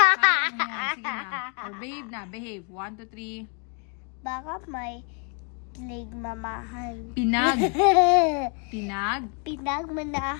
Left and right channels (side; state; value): right; quieter; 38.6 dB